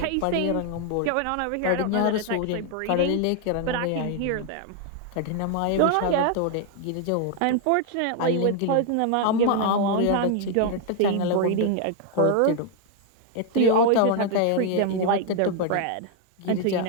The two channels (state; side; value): different; both; correlation 0.00